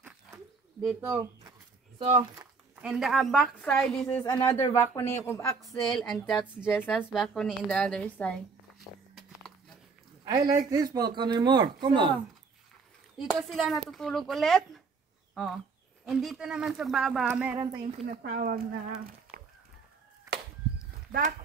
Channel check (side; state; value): left; quieter; 4.8 dB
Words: So, and the back side, this is another balcony of Axel, and that's Jessa's balcony in the other side. I like this balcony more. Come on. Dito sila natutulog ulit. Oh. And dito naman sa baba, meron tayong tinatawag na